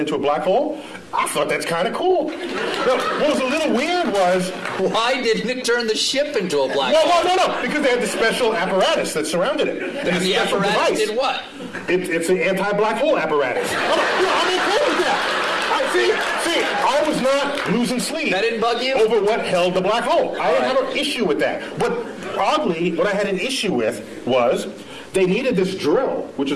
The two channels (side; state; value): both; identical; correlation 1.00